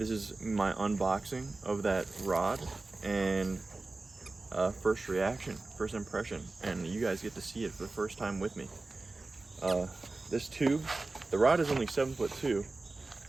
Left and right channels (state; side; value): quieter; left; 3.4 dB